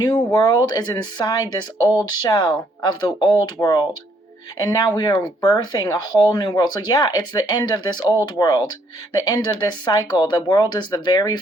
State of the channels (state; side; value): normal; both; correlation 0.69